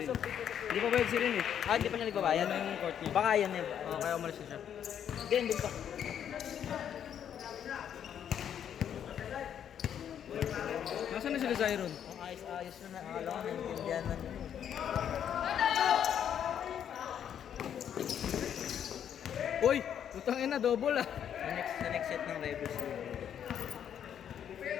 rin. Hindi pa bayad si Rin eh. Ah, hindi pa siya nagbabayad. Yan yung court niya. Baka yan eh. Oo, kaya umalis na siya. Ganyan din pa. Nasaan na sila Zyron? Ang ayos-ayos na nakakala ko naintindihan na nyo. Uy! Utang ina, double ah. Sa next set ng Rebels.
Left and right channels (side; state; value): right; quieter; 9.1 dB